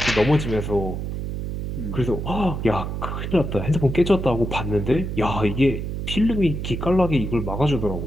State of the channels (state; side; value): noise; right; hum, 4 dB below the sound